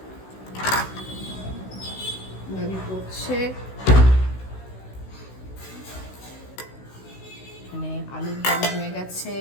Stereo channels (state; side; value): late; right; 16 ms